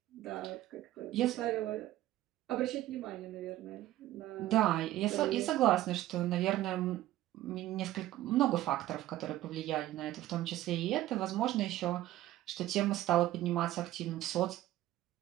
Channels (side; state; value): left; quieter; 14.8 dB